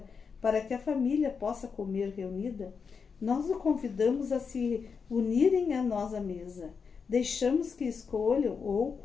para que a família possa comer reunida, nós o convidamos a se unirem a nós à mesa. Deixamos que escolham, ou,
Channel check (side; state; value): right; quieter; 5.7 dB